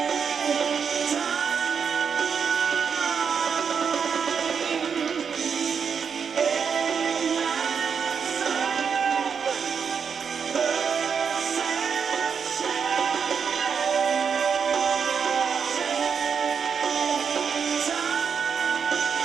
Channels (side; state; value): left; quieter; 6.5 dB